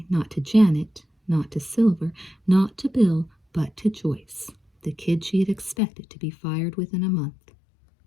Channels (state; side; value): drops out; right; at 5.8 s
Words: not to Janet, not to Silver, not to Bill, but to Joyce, the kid she had expected to be fired within a month.